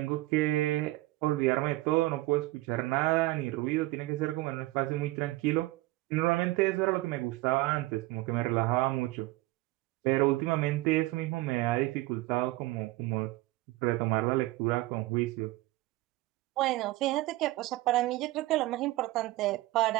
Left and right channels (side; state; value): left; quieter; 19.2 dB